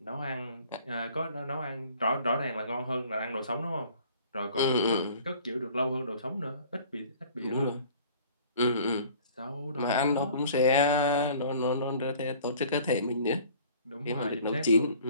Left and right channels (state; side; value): inverted; both; correlation -0.50